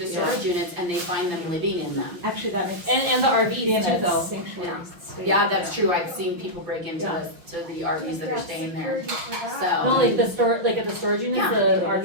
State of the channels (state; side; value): late; left; 5.9 ms